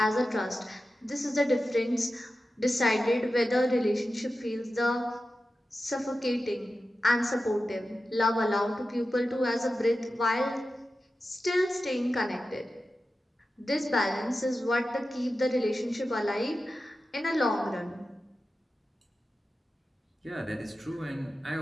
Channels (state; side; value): normal; both; correlation 0.93